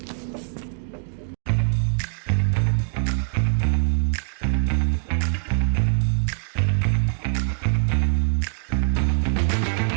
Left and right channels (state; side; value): silent; left; 63 dB below the other